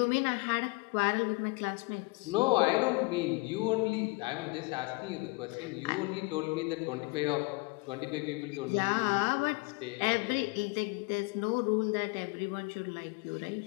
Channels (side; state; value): right; quieter; 27.5 dB